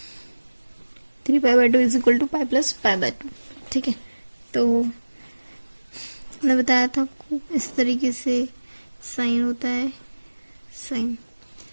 3 pi by 2 is equal to pi plus pi by 2, ठीक है। तो मैंने बताया था आपको इस तरीके से साइन होता है, साइन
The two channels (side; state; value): both; inverted; correlation -1.00